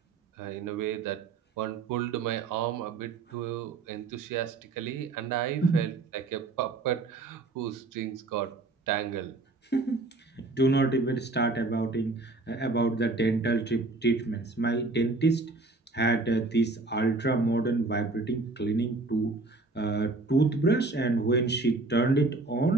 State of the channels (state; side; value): quieter; left; 3.4 dB